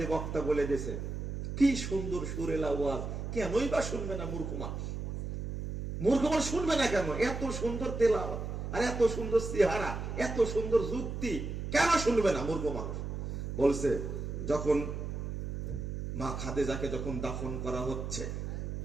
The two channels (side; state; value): right; noise; hum, 5 dB below the sound